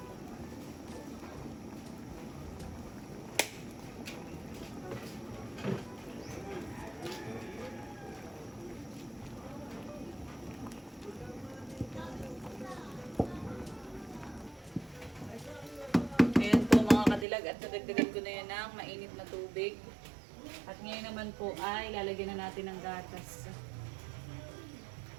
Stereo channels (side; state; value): left; drops out; at 17.2 s